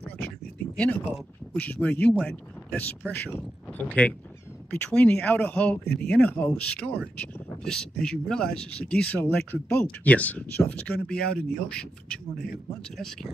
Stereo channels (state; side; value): normal; both; correlation 0.88